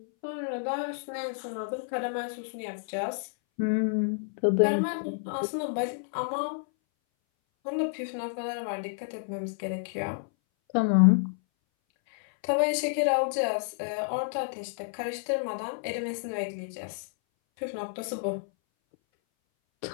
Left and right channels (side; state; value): right; silent; 58 dB below the other